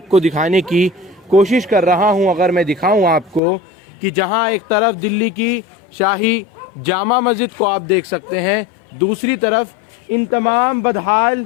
दिखाने की कोशिश कर रहा हूं, अगर मैं दिखाऊं आपको कि जहां एक तरफ दिल्ली की शाही जामा मस्जिद को आप देख सकते हैं, दूसरी तरफ इन तमाम बदहाल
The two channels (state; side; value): drops out; right; at 3.4 s